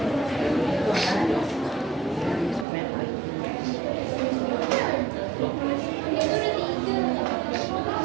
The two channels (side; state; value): left; drops out; at 2.7 s